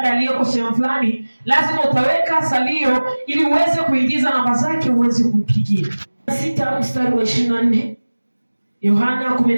aliyeko sehemu fulani, lazima utaweka salio ili uweze kuingiza namba zake uweze kumpigia. 6 mstari wa 24. Yohana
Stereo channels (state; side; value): inverted; both; correlation -1.00